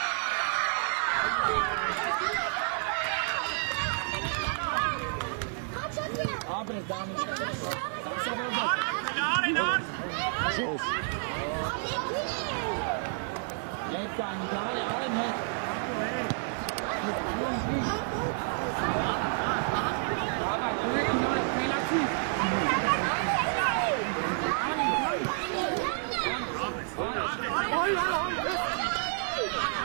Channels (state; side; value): silent; left; 58 dB below the other